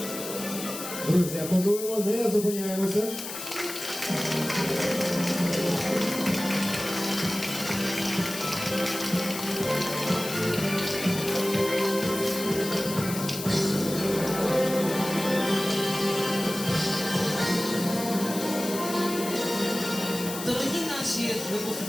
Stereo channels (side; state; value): left; noise; hiss, 8 dB below the sound